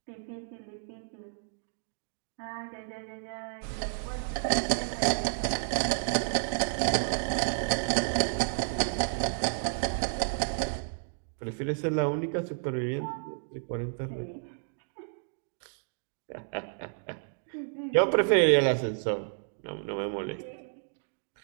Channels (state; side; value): silent; left; digital silence